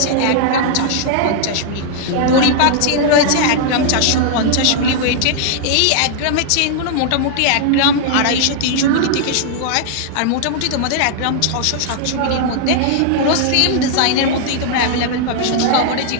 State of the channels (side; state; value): both; different; correlation -0.01